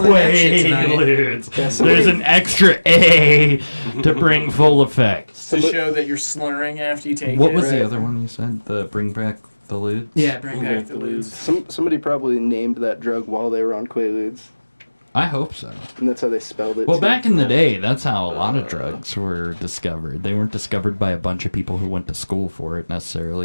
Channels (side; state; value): both; inverted; correlation -1.00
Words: that shit tonight. Quaaludes. There's an extra A to bring full effect. To show that you're slurring after you take What it. was Right. the other one you said? The bring back the ludes? Yeah, bring back the lose. Somebody probably named that drug while they were on Quaaludes, I hope so. and that's how they spelled it. Well, too. back in the day, that's how a lot of drugs were discovered. They weren't discovered by a bunch of people who went to school for it